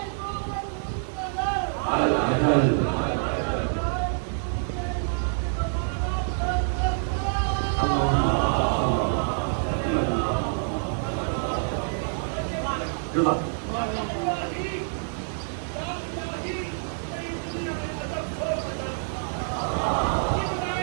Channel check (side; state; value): left; silent; digital silence